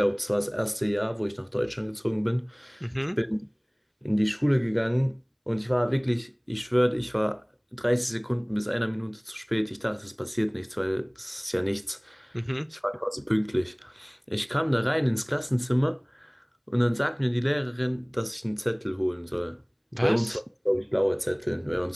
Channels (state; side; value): identical; both; correlation 1.00